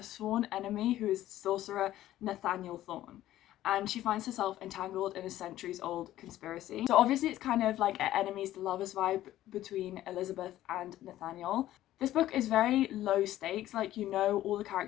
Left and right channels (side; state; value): right; quieter; 13.9 dB